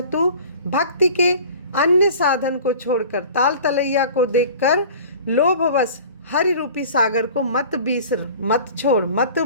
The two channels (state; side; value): inverted; both; correlation -0.43